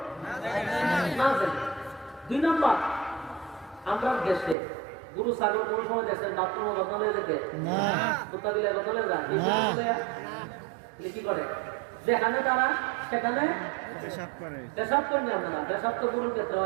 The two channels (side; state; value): left; drops out; at 4.5 s